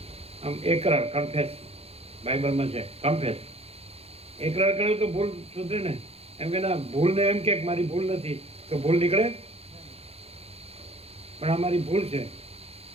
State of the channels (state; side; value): late; left; 0.29 ms